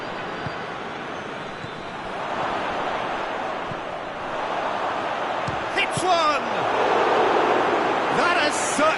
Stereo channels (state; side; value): identical; both; correlation 1.00